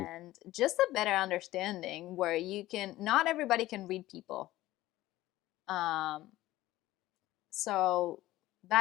And just a better understanding where you can, not everybody can read people. Um, so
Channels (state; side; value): quieter; right; 16.2 dB